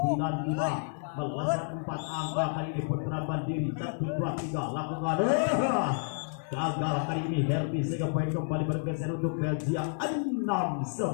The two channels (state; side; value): silent; right; digital silence